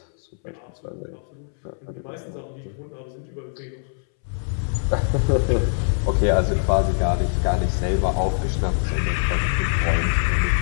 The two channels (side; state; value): right; silent; 63 dB below the other